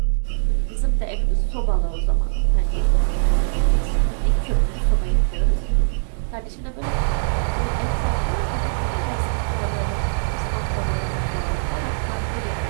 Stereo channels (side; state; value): left; silent; 64 dB below the other